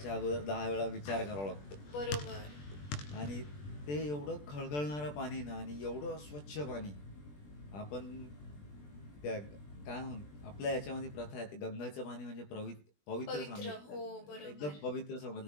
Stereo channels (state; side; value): late; right; 20 ms